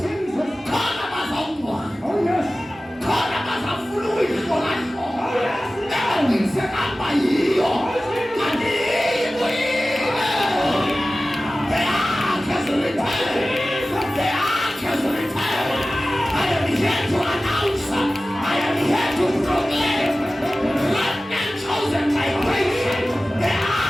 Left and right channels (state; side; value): normal; both; correlation 0.96